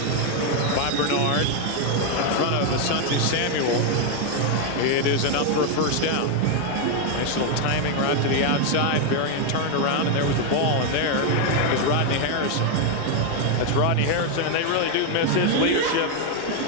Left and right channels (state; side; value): different; both; correlation 0.01